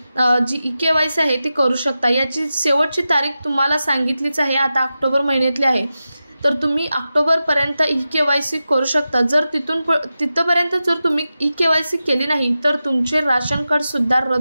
जी ई-KYC आहे ती करू शकता। याची शेवटची तारीख तुम्हाला सांगितलीच आहे, आता ऑक्टोबर महिन्यातली आहे। तर तुम्ही ऑक्टोबरपर्यंत ई-KYC करू शकता। जर तिथपर्यंत जर तुम्ही ई-KYC केली नाही तर तुमचे राशन कार्ड सुद्धा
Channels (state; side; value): inverted; both; correlation -0.92